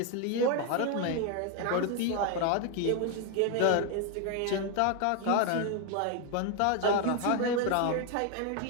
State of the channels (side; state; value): both; different; correlation 0.01